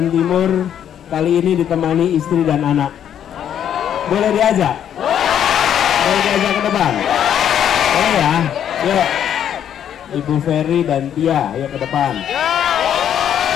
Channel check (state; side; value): quieter; right; 9.6 dB